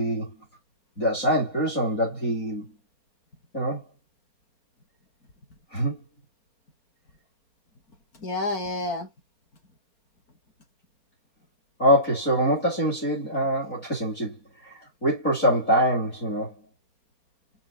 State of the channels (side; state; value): right; late; 4.3 ms